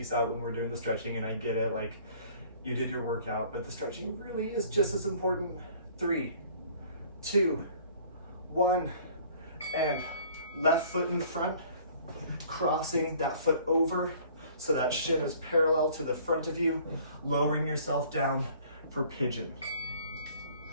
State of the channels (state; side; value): inverted; both; correlation -0.54